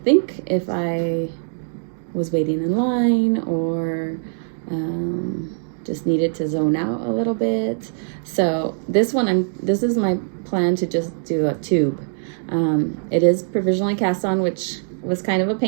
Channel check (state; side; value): silent; left; digital silence